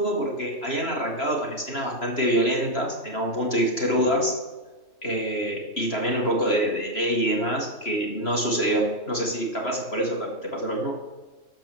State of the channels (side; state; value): right; late; 3.0 ms